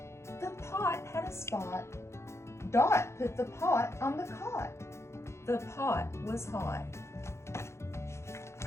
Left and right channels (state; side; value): late; right; 0.13 ms